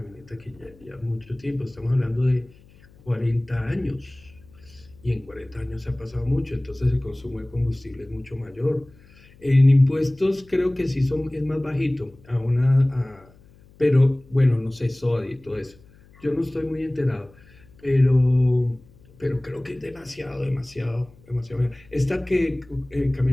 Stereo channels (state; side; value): noise; left; hum, 26 dB below the sound